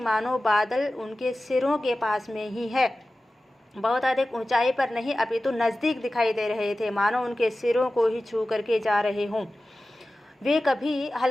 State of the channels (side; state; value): both; normal; correlation 0.95